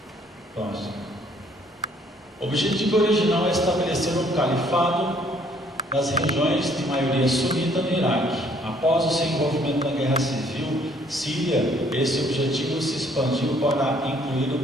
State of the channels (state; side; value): normal; both; correlation 0.63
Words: Próximo. O objetivo original é estabelecer um califado nas regiões de maioria sunita no Iraque. Após o seu envolvimento na guerra civil síria, esse objetivo se expandiu para incluir